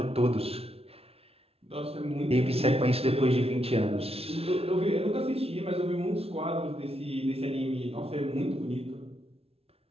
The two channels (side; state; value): left; late; 0.29 ms